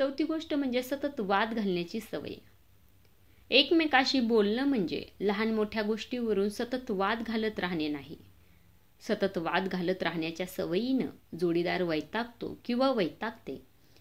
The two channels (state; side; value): identical; both; correlation 1.00